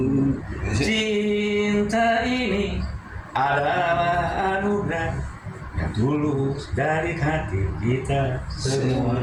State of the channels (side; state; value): both; identical; correlation 1.00